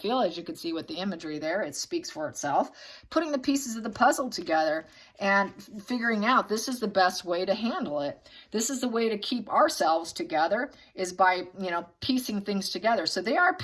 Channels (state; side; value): identical; both; correlation 1.00